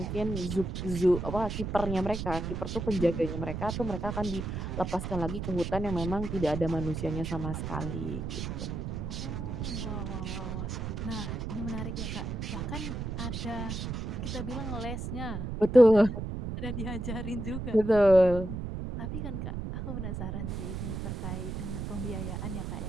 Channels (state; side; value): noise; right; rumble, 4 dB below the sound